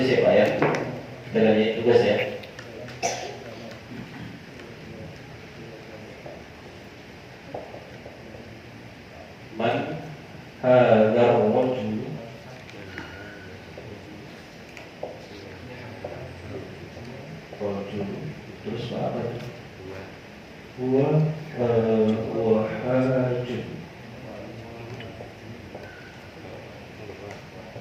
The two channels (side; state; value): both; identical; correlation 1.00